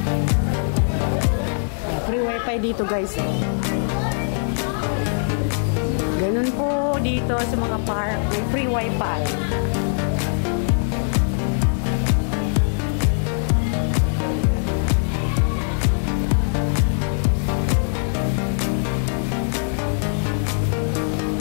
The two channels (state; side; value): silent; right; 64 dB below the other